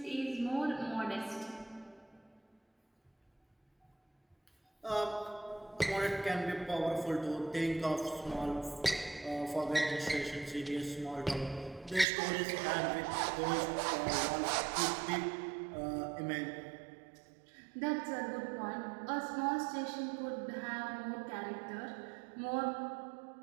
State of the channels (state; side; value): drops out; left; at 12.1 s